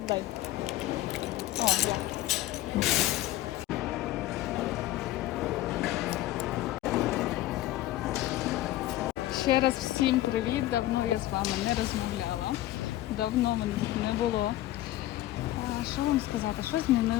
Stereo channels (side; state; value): right; quieter; 15.4 dB